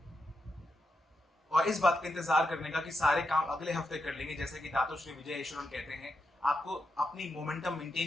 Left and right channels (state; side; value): normal; both; correlation 0.85